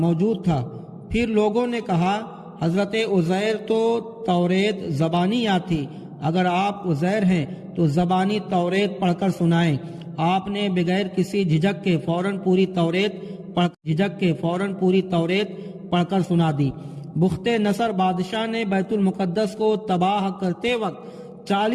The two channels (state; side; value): identical; both; correlation 1.00